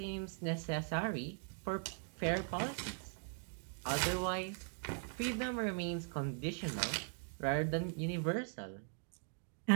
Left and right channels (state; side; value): silent; left; 51 dB below the other